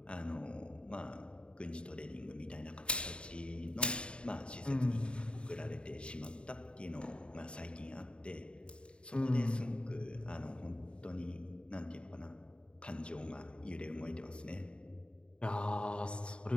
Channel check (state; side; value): late; right; 0.054 ms